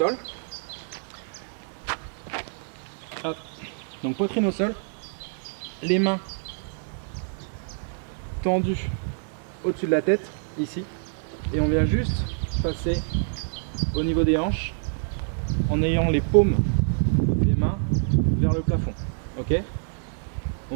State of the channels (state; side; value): silent; left; 61 dB below the other